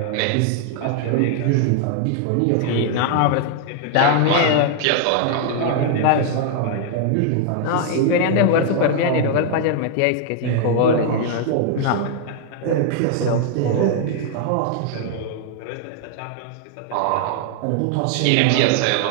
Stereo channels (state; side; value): different; both; correlation 0.00